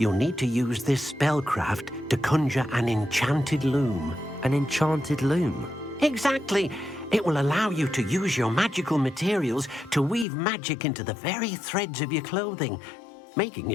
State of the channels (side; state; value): right; drops out; at 10.2 s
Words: need to use this spellcraft to conjure an enchanted loom. An enchanted loom? Exactly. It will allow you to use your magical materials to weave magic into the very threads of your clothing, making